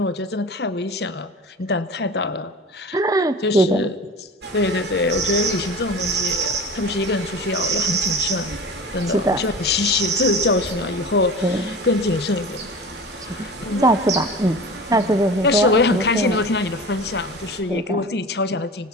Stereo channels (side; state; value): both; normal; correlation 0.35